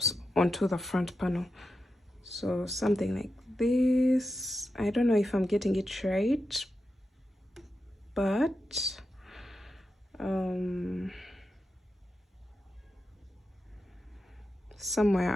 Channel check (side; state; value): both; normal; correlation 0.89